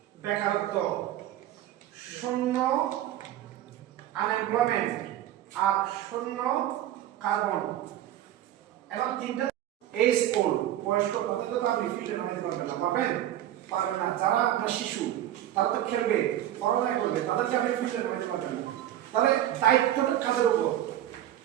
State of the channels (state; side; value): quieter; left; 12.5 dB